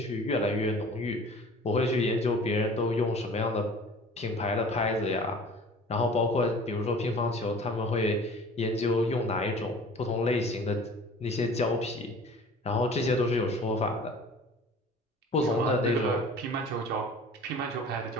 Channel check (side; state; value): both; normal; correlation 0.45